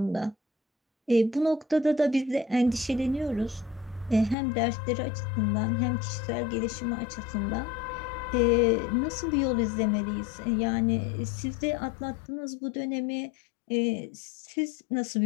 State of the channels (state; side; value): drops out; right; at 4.4 s